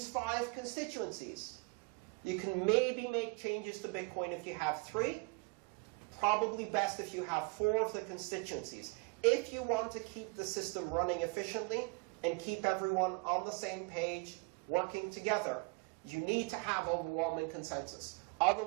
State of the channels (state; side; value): quieter; left; 29.9 dB